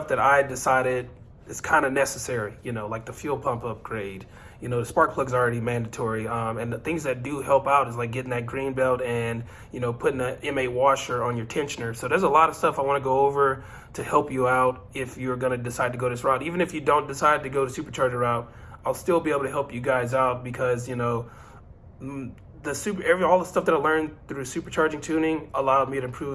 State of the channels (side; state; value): both; identical; correlation 1.00